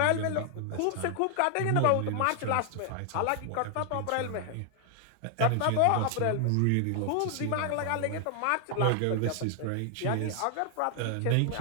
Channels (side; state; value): both; different; correlation 0.00